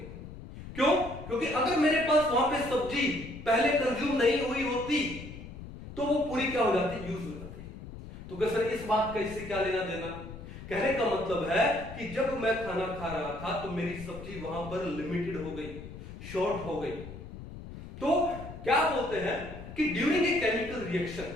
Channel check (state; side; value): noise; left; rumble, 13 dB below the sound